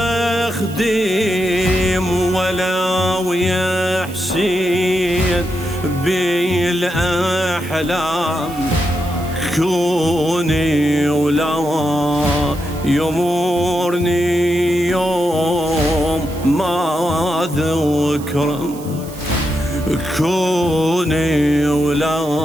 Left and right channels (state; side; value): noise; right; hiss, 18 dB below the sound